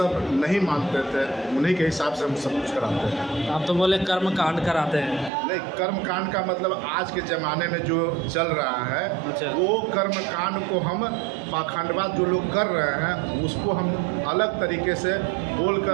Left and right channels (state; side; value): drops out; left; at 5.3 s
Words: नहीं मानते थे, उन्हीं के हिसाब से हम सब कुछ कराते हैं। आप तो बोले कर्म कांड कराते हैं। नहीं, कर्म कांड का मतलब आज के ज़माने में जो चल रहा है, अच्छा। वो कर्म कांड को हम पाखंडवाद जो लोग कर रहे हैं उसको हम अलग तरीके से